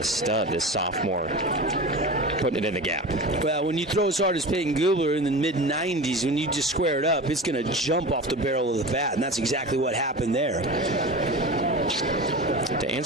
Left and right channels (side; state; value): both; normal; correlation 0.31